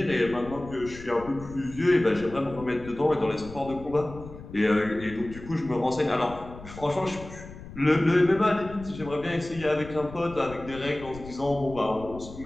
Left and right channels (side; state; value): left; noise; rumble, 15 dB below the sound